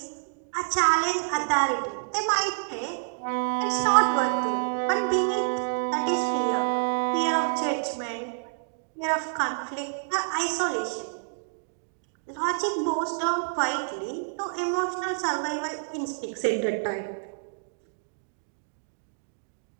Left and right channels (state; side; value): silent; left; digital silence